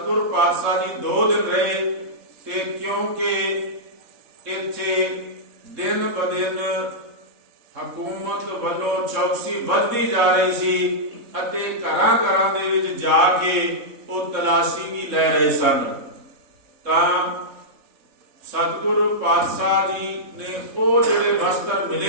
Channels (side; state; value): left; late; 3.7 ms